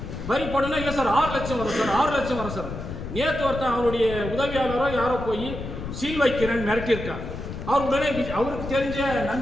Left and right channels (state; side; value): noise; left; rumble, 8 dB below the sound